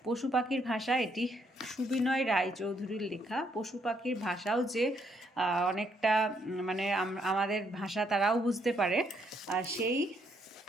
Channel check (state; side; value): normal; both; correlation 0.72